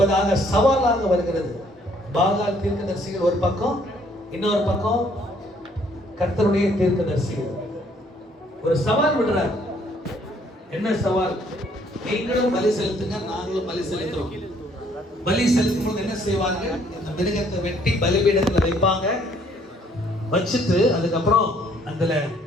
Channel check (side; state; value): both; normal; correlation 0.64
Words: சவாலாக வருகிறது பாகால் தீர்க்கதரிசிகள் ஒரு பக்கம் இன்னொரு பக்கம் கர்த்தருடைய தீர்க்கதரிசிகள் ஒரு சவால் விடுறார் என்ன சவால் நீங்களும் பலி செலுத்துங்க நாங்களும் பலி செலுத்துறோம் பலி செலுத்தும் போது என்ன செய்வாங்க இந்த மிருகத்தை வெட்டி பலிபீடத்துல வைப்பாங்க வச்சுட்டு அதுக்கப்புறம் அதுல